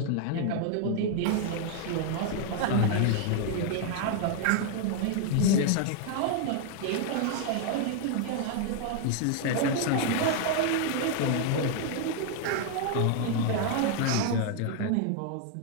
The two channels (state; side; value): different; both; correlation 0.00